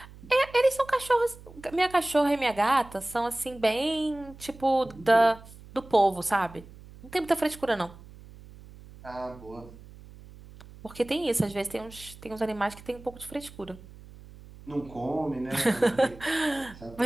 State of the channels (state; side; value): noise; right; hum, 19 dB below the sound